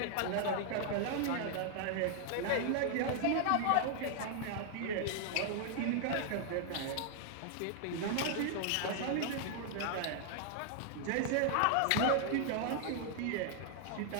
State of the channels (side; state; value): both; different; correlation 0.00